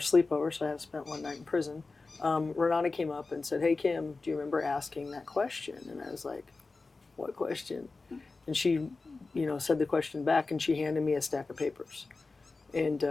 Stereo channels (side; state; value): right; quieter; 3.8 dB